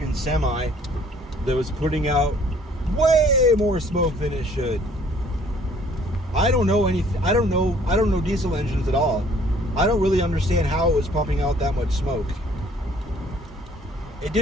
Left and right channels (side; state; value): both; normal; correlation 0.58